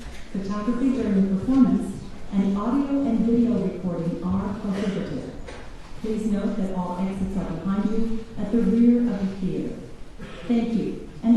Photography during the performance and audio and video recording are prohibited. Please note that all exits are behind you at the rear of the theater. Thank you, and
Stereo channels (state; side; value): identical; both; correlation 1.00